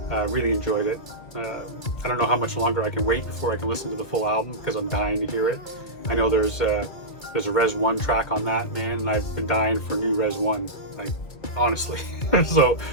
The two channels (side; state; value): right; late; 2.3 ms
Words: Really enjoyed it. I don't know how much longer I can wait before I can listen to the full album because I'm dying to hear it. I know there's a Res 1 track on that, man, and I've been dying for new Res 1, like, honestly. So